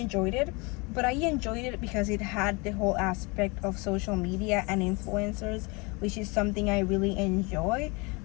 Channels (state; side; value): quieter; right; 28.4 dB